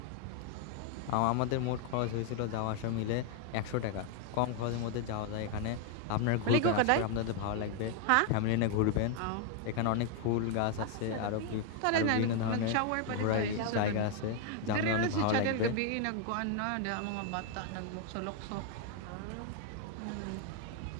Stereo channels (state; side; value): different; both; correlation 0.00